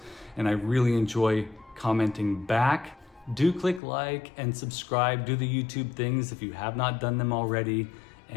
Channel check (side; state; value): right; drops out; at 3.8 s